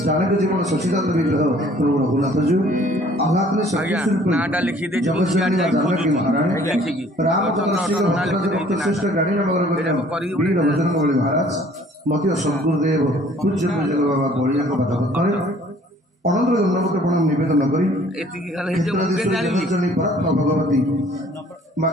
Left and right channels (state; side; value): normal; both; correlation 0.56